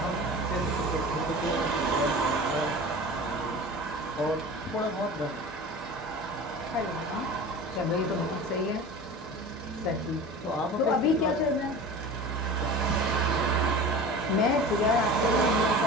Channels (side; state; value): both; normal; correlation 0.36